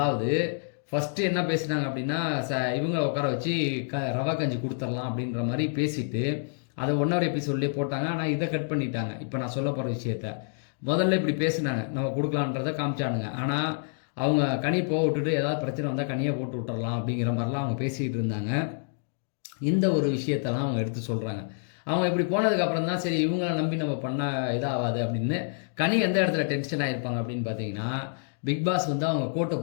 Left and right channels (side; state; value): right; silent; digital silence